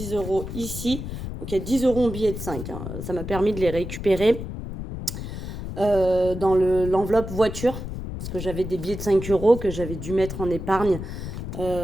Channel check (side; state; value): left; noise; rumble, 7 dB below the sound